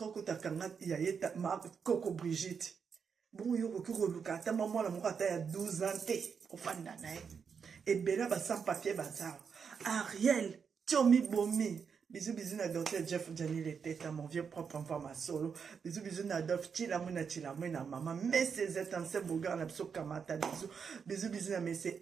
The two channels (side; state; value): left; quieter; 6.3 dB